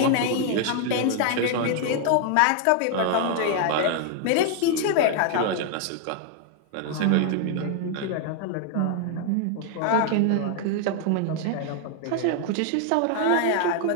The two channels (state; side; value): different; both; correlation 0.00